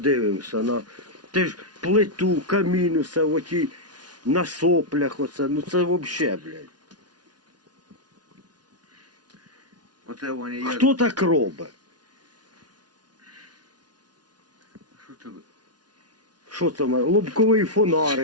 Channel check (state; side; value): late; left; 0.69 ms